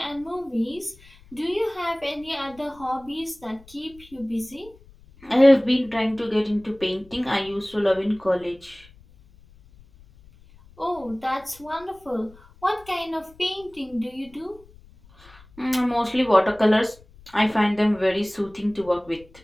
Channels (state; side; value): noise; left; rumble, 25 dB below the sound